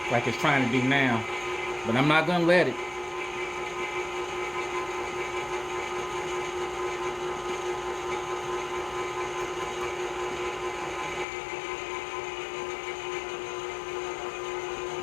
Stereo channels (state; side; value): drops out; right; at 11.2 s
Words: Like it's trying to do now. But I'm not gonna let it.